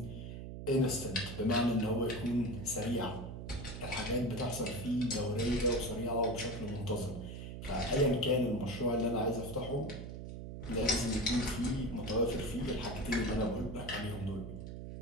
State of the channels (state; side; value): noise; right; hum, 8 dB below the sound